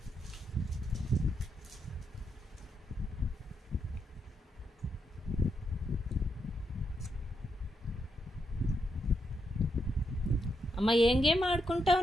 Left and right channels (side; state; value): both; normal; correlation 0.81